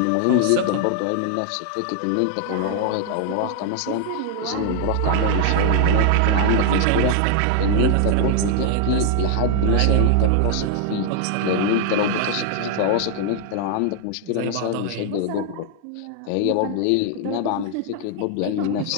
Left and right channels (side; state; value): both; different; correlation 0.00